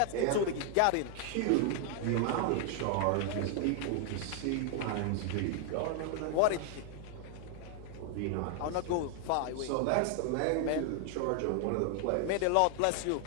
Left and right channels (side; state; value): both; different; correlation 0.00